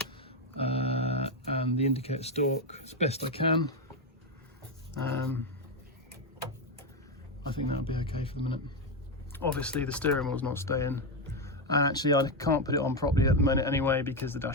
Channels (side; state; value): both; normal; correlation 0.08